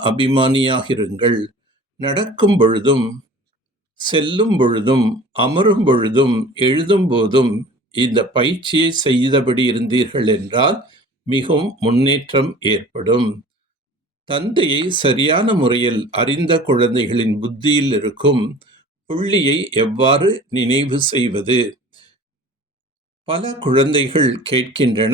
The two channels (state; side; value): normal; both; correlation 0.44